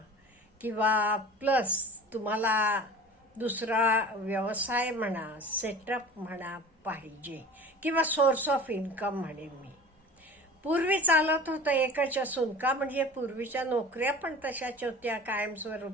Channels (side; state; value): both; normal; correlation 0.39